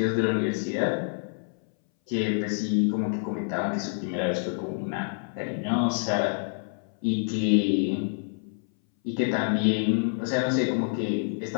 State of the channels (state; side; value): silent; right; 60 dB below the other